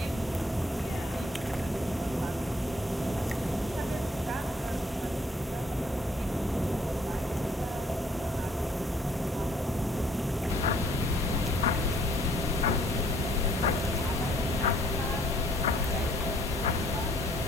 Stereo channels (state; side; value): normal; both; correlation 0.62